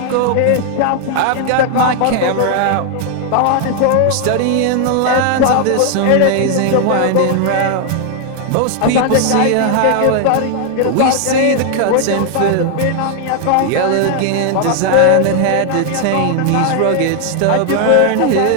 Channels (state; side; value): different; both; correlation 0.00